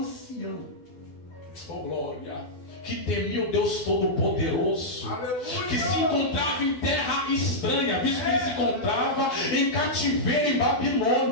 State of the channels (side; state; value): right; late; 12 ms